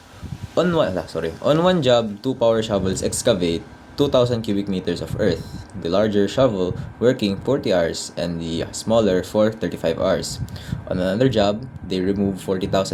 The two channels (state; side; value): identical; both; correlation 1.00